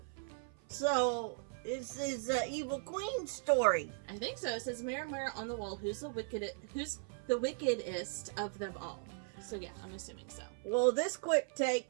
So, this is an evil queen story. I think so. It says, mirror, mirror on the wall, who's the wickedest of them all? So yeah, I'm assuming so. Well, this quick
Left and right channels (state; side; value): silent; left; 53 dB below the other